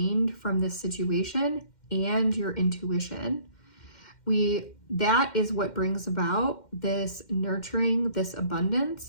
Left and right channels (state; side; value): late; right; 2.1 ms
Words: from this situation and your intuition. That is what brings about this nurturing, this